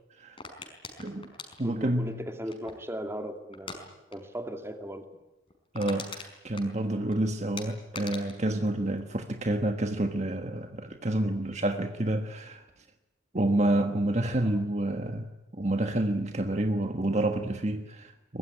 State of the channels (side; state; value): both; normal; correlation 0.74